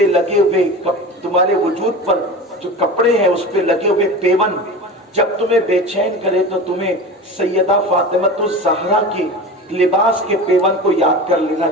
لگے ہوئے، تمہارے وجود پر جو کپڑے ہیں اس پہ لگے ہوئے پیون جب تمہیں بے چین کرے تو تمہیں سیدہ فاطمۃ الزہرا کے لباس کے پیون کو یاد کر لینا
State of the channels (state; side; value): normal; both; correlation 0.31